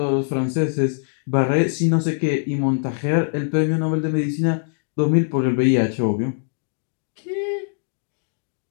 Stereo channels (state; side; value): silent; right; digital silence